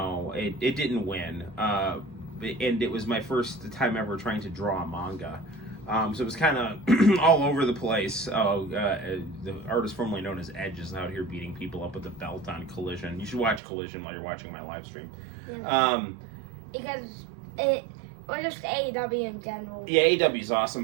didn't win, and it was my first time ever trying to draw a manga, so it was kind of all over the place. The artist formerly known as Edge is out here beating people up with a belt on Collision. You should watch Collision while you're watching my live stream. Yeah. Because or just AEW in general. Yeah, AEW is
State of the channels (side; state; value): left; drops out; at 13.6 s